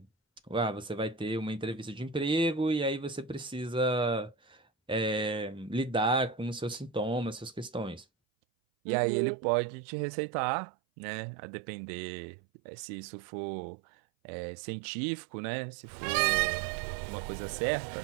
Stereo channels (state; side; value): drops out; left; at 8.1 s